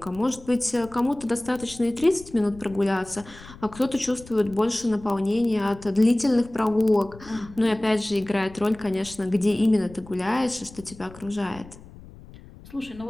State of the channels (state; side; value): noise; left; rumble, 19 dB below the sound